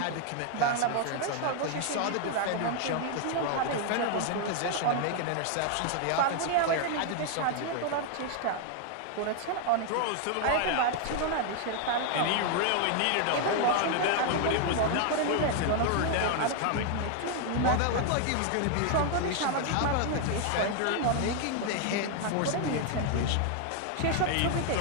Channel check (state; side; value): different; both; correlation 0.00